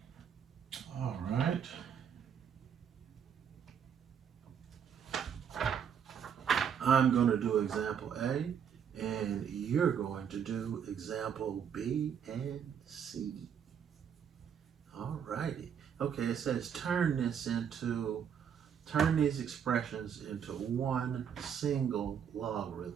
All right. I'm going to do example A, and you're going to do example B and C. All righty. Okay, it says turn these expressions into one single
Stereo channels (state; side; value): quieter; left; 7.9 dB